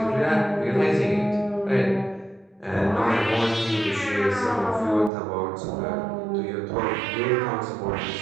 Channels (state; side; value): drops out; left; at 5.1 s